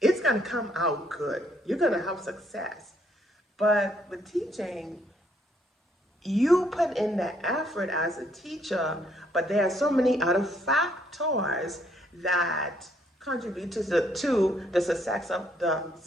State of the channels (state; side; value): normal; both; correlation 0.69